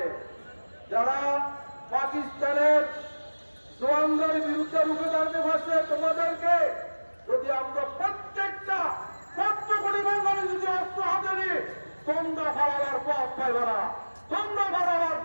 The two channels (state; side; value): inverted; both; correlation -1.00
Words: যারা পাকিস্তানের জওয়ানদের বিরুদ্ধে রুখে দাঁড়াতে পারছে, তোমাদেরকে যদি আমরা প্রত্যেকটা ১৪ কোটি বাঙালি যদি অস্ত্র হাতে নিই, তোমরা হারাবার পথ পাইবে না, তোমরা হারাবার